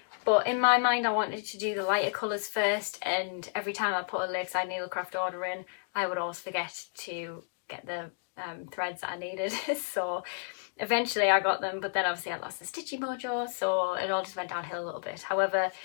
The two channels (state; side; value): silent; right; digital silence